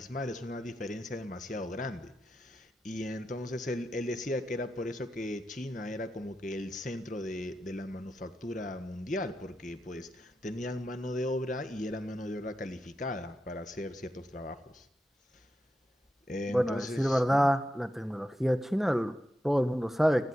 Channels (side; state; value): both; normal; correlation 0.87